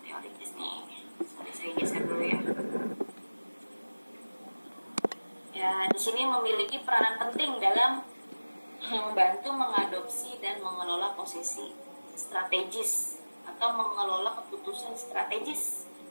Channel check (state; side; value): inverted; both; correlation -1.00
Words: teoritis nih. Sorry, saya geser dulu ya. Ya, di sini memiliki peranan penting dalam membantu mengadopsi dan mengelola posisi strategis atau mengelola keputusan strategis